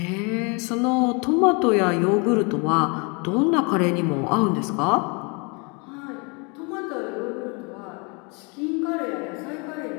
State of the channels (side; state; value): right; quieter; 31.8 dB